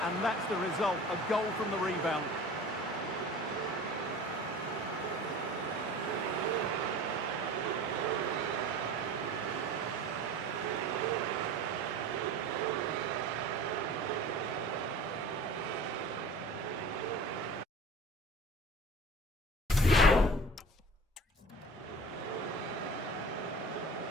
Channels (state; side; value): normal; both; correlation 0.40